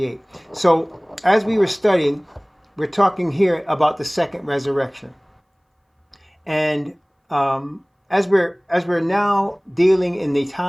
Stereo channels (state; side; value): identical; both; correlation 1.00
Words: So as we were studying, we're talking here about the second resurrection. And as we're now dealing in the